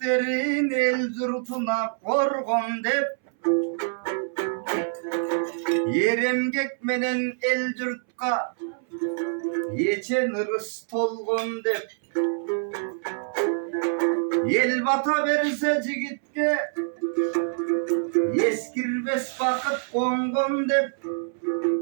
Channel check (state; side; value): silent; left; 61 dB below the other